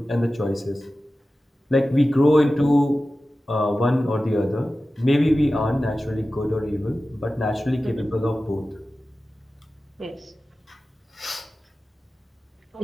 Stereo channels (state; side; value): normal; both; correlation 0.95